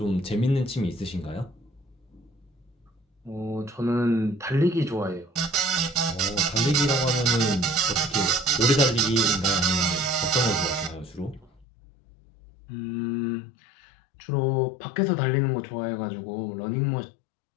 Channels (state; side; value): drops out; right; at 11.7 s